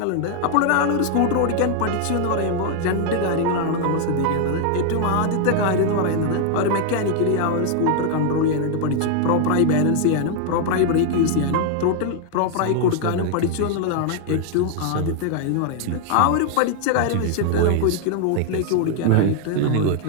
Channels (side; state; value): both; different; correlation 0.00